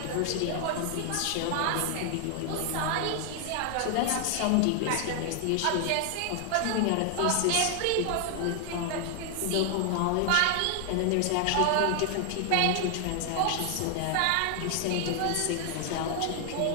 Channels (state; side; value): different; both; correlation 0.00